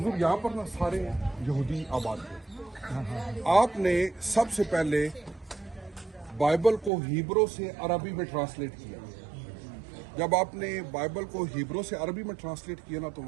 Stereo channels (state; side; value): drops out; left; at 6.9 s